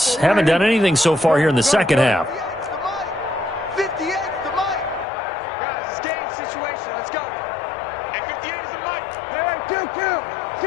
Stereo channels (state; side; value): drops out; right; at 5.1 s